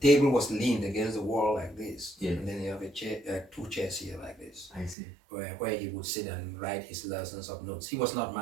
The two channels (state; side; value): drops out; left; at 5.0 s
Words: was leaned against the wall like this. And then you have a chair, 2 chairs here like this. I see. Where he would sit and write his lessons of notes. He was not